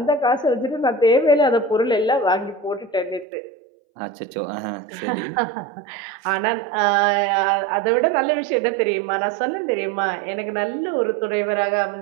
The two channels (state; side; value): drops out; left; at 3.2 s